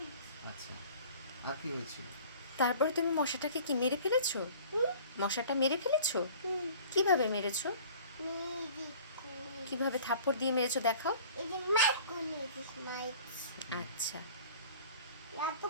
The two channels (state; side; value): inverted; both; correlation -0.47